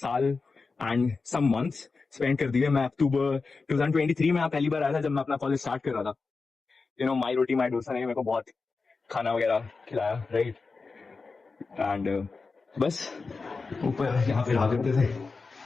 and some months spend कर दिए. मैं अक्टूबर 2023 में पहली बार आया था जब मैं अपना कॉलेज स्टार्ट कर रहा था. My routine, my dosa ने मेरे को बहुत खाना वगैरह खिलाया, right? And बस ऊपर यहाँ पे रह जाते थे.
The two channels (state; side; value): quieter; right; 4.3 dB